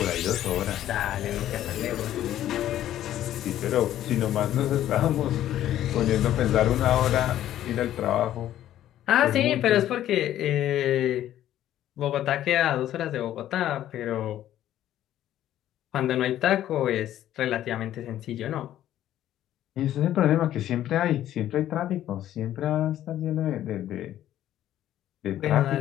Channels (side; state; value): right; quieter; 12.3 dB